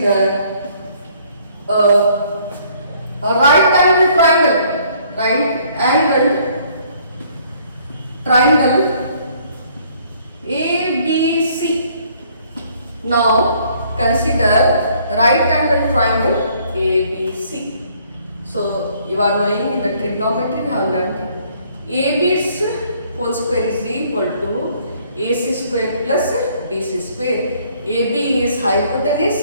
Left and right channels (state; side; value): inverted; both; correlation -0.62